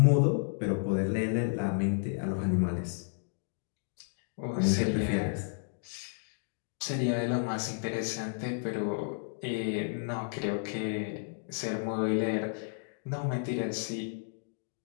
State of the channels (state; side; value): silent; right; digital silence